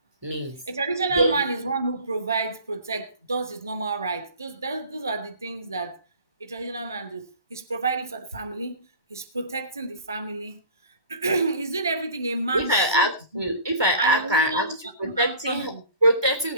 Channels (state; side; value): inverted; both; correlation -0.43